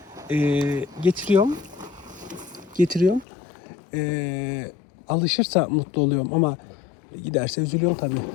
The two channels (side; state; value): right; drops out; at 3.2 s